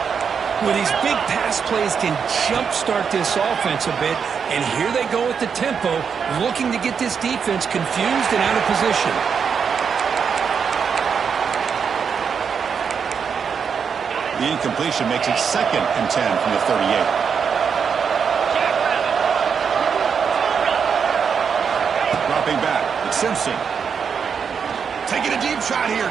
Well, these big pass plays can jumpstart this offense a bit, and here they go with the tempo, looking to get this defense confused and out of position. The incompletion makes it 2nd and 10 from the 38. Dropping back, it's Simpson. Taking a deep shot here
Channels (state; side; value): quieter; left; 6.6 dB